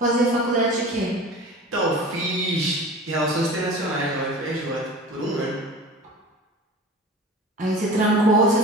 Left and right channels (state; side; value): normal; both; correlation 0.37